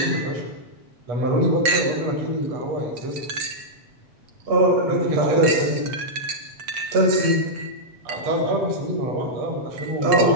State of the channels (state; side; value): late; left; 7.9 ms